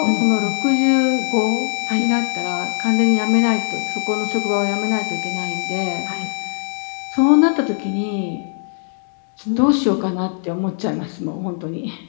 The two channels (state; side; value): silent; right; 66 dB below the other